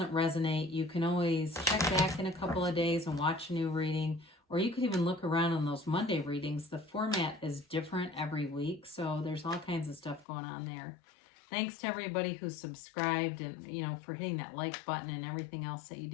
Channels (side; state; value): right; drops out; at 10.2 s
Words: resonate, you can always check back in a couple of days and watch a new reading. Or you could even look around on those Monday readings. The format is different every week, so there's all kinds of stuff going on there. Thanks to everybody who subscribed and, for hitting that like button and everything else that you